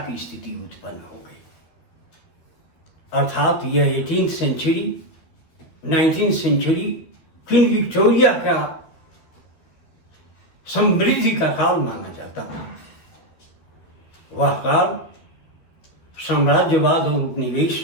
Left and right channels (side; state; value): right; late; 12 ms